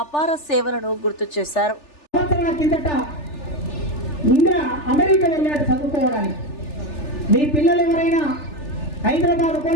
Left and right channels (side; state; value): right; late; 3.4 ms